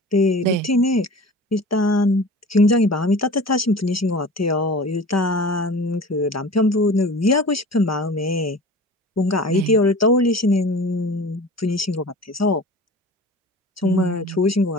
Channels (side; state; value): both; normal; correlation 0.39